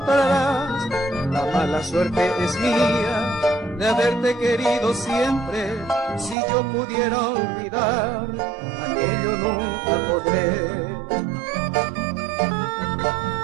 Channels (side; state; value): left; drops out; at 6.4 s